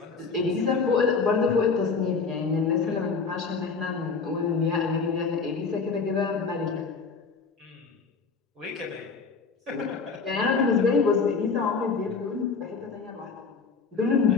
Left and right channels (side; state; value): right; quieter; 4.9 dB